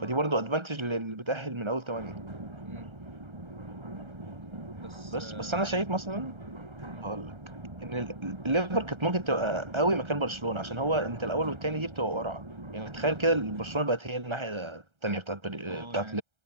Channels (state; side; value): late; left; 1.3 ms